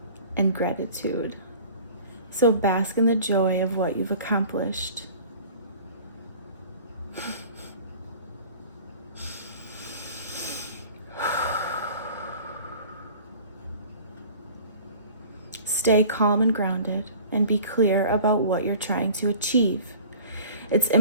and gratitude. So bask in the joy of what you've accomplished. stay calm and grounded and be clear about what you're trying to achieve. It's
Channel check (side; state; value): both; inverted; correlation -0.45